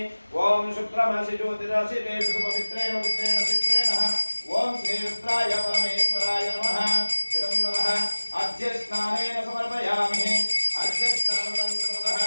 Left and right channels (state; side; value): inverted; both; correlation -1.00